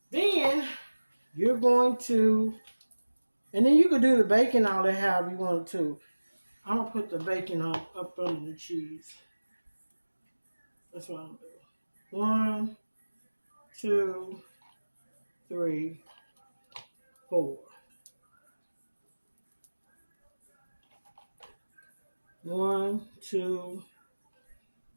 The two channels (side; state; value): both; inverted; correlation -1.00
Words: Then you're going to, and then you can do the bacon all that however you want to. I'm going to put the bacon up under the cheese. That's what I'm doing. 1, 2, 3, 4. 1, 2,